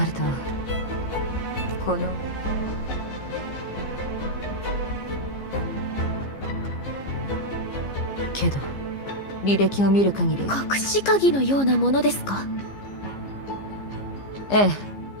ると、このけど履歴を見る限り隠し鍵のようなものですか。ええ、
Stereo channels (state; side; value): late; right; 15 ms